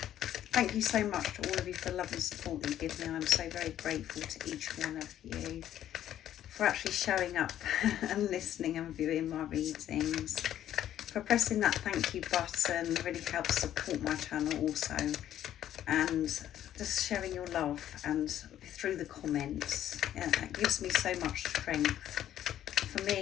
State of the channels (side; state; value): right; quieter; 11.5 dB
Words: Thank you so much to all of you for the love and support that you give me. I'm so very grateful to each one of you for actually showing up and listening and viewing my readings, for pressing that thank you button. It really helps support my channel also, and just sharing your love and through the comments. It gives me so much strength for